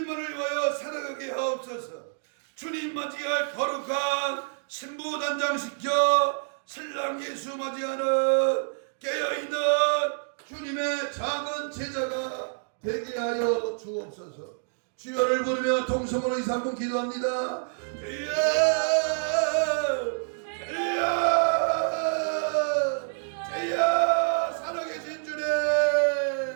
위하여 살아가게 하옵소서. 주님 맞이할 거룩한 신부 단장시켜 신랑 예수 맞이하는 깨어있는 주님의 작은 제자가 되게 하여 주옵소서. 주여를 부르며 통성으로 2-3분 기도합니다. 주여 주여 주여 살아계신 주님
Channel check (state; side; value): silent; left; digital silence